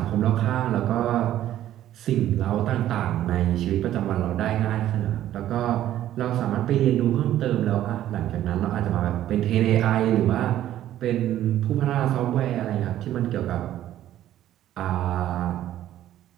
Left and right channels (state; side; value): quieter; left; 12.6 dB